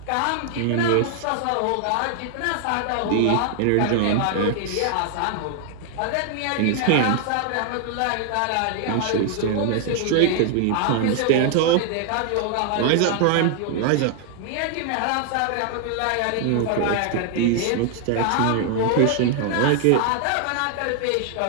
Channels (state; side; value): different; both; correlation 0.00